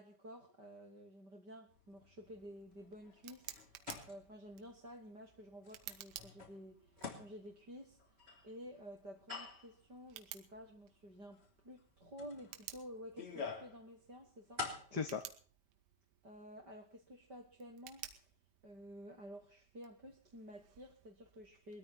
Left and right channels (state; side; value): late; left; 5.1 ms